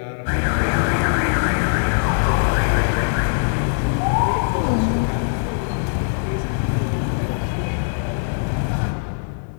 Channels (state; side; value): silent; right; digital silence